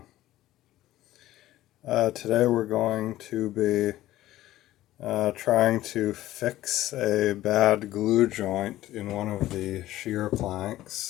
Today we're going to be trying to fix a bad glue joint in one of the shear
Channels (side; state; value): right; quieter; 15.0 dB